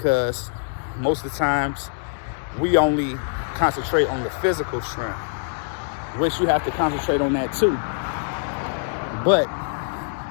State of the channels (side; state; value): right; silent; digital silence